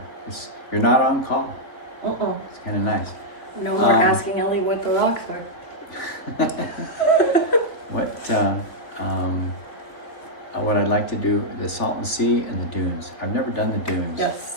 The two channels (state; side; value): late; right; 3.4 ms